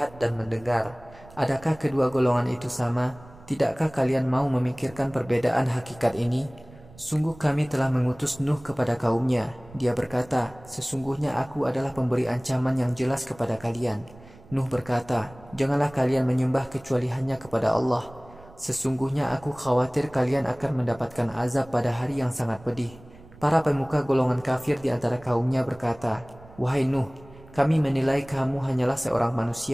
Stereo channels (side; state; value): right; noise; rumble, 22 dB below the sound